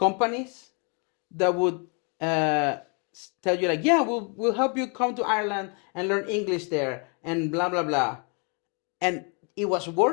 that would tell you like, yeah, we'll help you come to Ireland and learn English there and blah blah blah. And it was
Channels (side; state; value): right; quieter; 36.7 dB